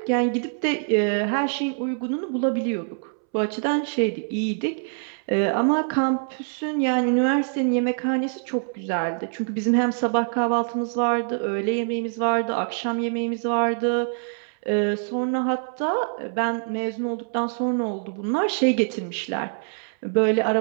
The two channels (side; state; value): left; silent; 62 dB below the other